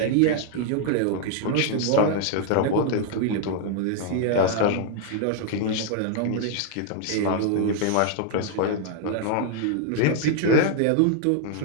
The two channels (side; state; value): both; different; correlation 0.00